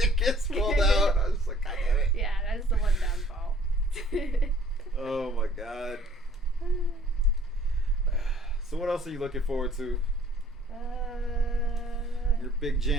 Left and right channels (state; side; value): normal; both; correlation 0.57